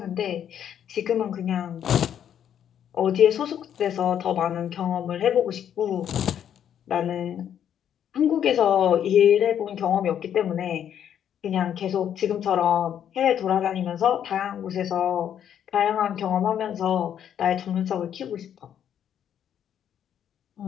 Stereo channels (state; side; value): quieter; right; 9.5 dB